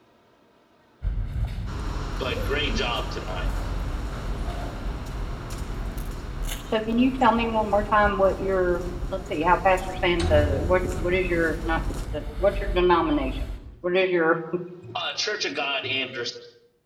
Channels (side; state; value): both; identical; correlation 1.00